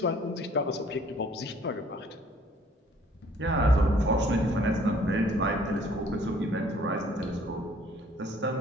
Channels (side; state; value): both; normal; correlation 0.58